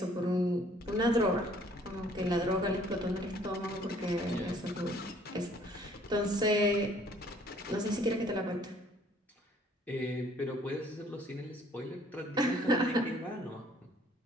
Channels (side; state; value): both; normal; correlation 0.59